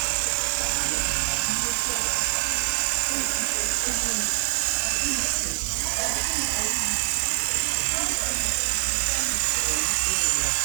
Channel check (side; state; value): left; silent; digital silence